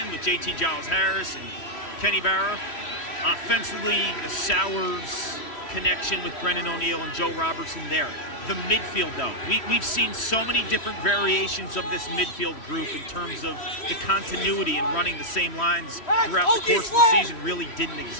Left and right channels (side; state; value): right; late; 3.1 ms